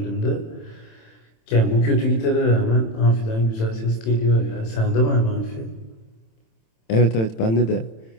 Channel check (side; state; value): right; late; 27 ms